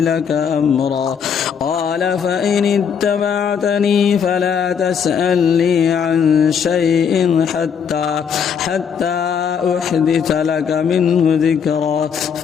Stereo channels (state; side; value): quieter; right; 7.1 dB